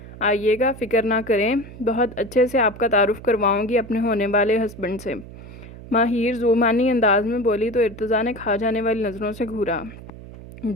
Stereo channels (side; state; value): right; noise; hum, 15 dB below the sound